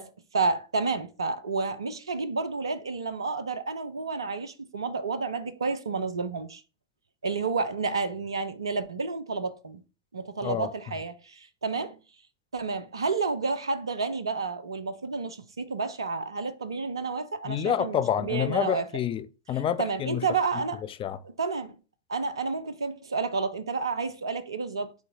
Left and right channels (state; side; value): inverted; both; correlation -0.43